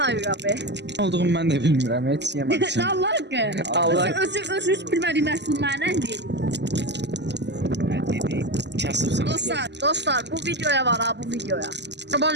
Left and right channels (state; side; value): late; left; 0.50 ms